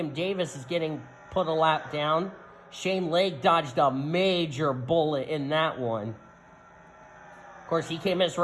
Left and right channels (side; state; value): both; identical; correlation 1.00